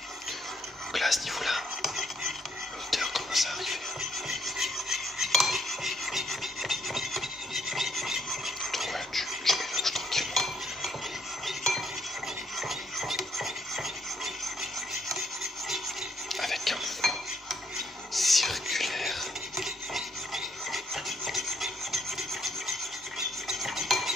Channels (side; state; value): both; normal; correlation 0.71